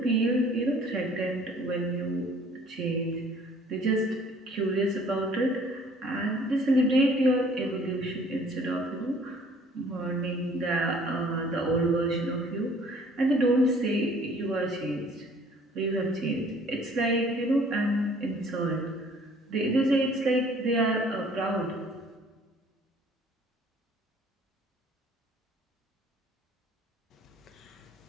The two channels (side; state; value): both; normal; correlation 0.55